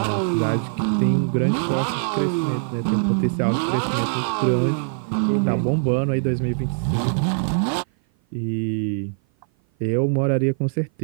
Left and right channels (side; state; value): left; silent; 56 dB below the other